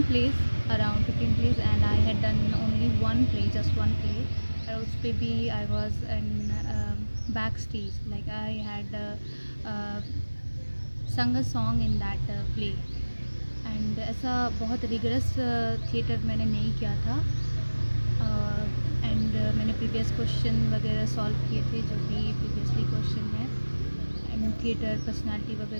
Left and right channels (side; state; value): both; inverted; correlation -1.00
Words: place, around 15 place, and I had done only one play, just one play. और उस पर भी I was in back stage, like I had sung a song in that play. And ऐसा बहुत rigorous theatre मैंने नहीं किया था। एंड मैंने प्रीवियस क्वेश्चन वगैरह सॉल्व किए थे, जो भी प्रीवियसली क्वेश्चन है, एंड थिएटर पर्सनालिटी